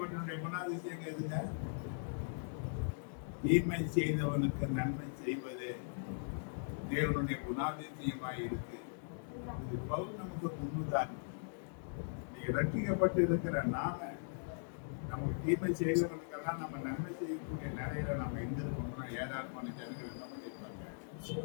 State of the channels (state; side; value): silent; right; digital silence